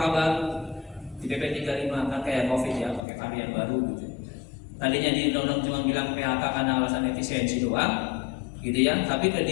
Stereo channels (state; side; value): drops out; right; at 3.1 s